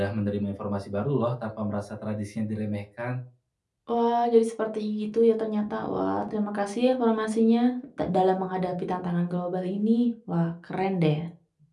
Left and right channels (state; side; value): identical; both; correlation 1.00